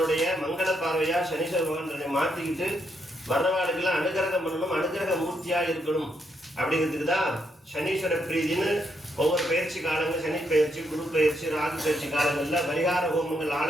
மங்கள பார்வையா சனீஸ்வர பகவான் தன்னை மாற்றிக்கிட்டு வர்றவாளுக்கெல்லாம் அனுகிரகம் பண்ணணும், அனுகிரக மூர்த்தியா இருக்கணும். அப்படிங்கிறதுக்கு தான் சனீஸ்வர பிரீதின்னு ஒவ்வொரு பயிற்சி காலங்கள், சனி பயிற்சி, குரு பயிற்சி, ராகு பயிற்சி காலங்கள்ல பரிகார ஹோமங்கள்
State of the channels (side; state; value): both; normal; correlation 0.78